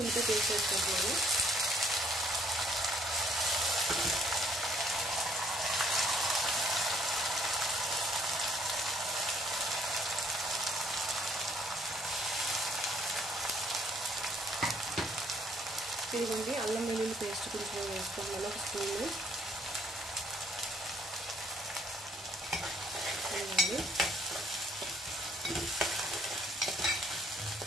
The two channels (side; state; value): both; normal; correlation 0.64